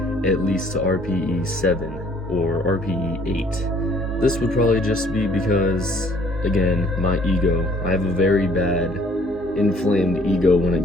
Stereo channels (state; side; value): normal; both; correlation 0.59